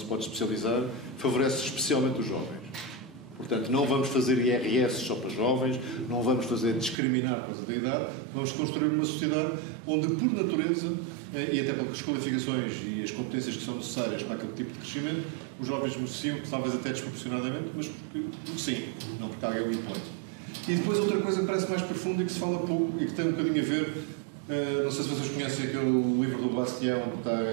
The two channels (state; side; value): drops out; left; at 7.0 s